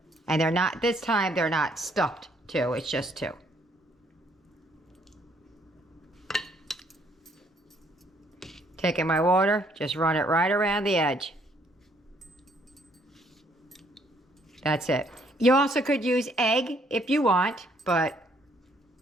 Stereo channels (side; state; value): both; normal; correlation 0.66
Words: And they're not, this time they're not stuffed 2, it's just 2. Taking my water, just run it right around the edge. That's it. You also could use egg if you want, but